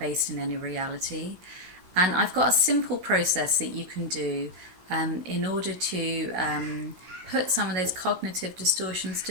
in any reality. And I've got a simple process that you can do in order to put some of those cognitive distortions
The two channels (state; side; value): late; left; 16 ms